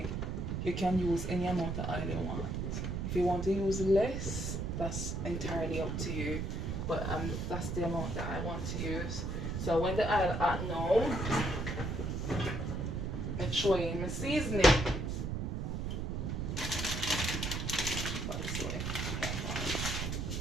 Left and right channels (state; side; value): noise; right; rumble, 2 dB below the sound